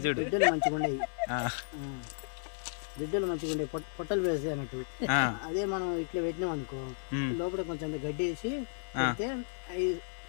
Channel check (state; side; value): silent; right; digital silence